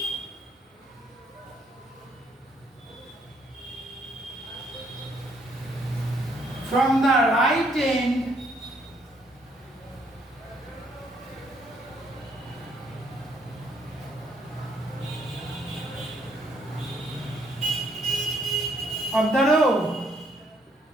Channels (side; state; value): both; normal; correlation 0.69